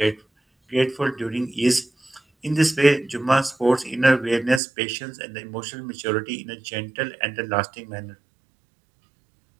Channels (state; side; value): drops out; left; at 4.6 s